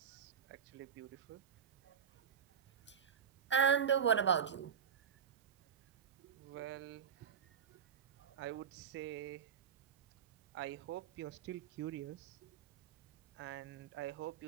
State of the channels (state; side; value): quieter; left; 7.6 dB